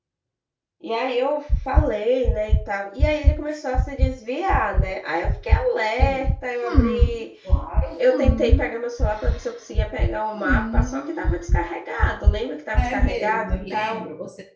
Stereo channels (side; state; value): both; identical; correlation 1.00